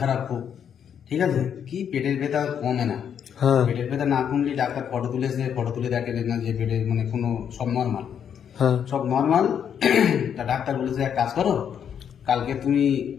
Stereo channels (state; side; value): quieter; right; 8.3 dB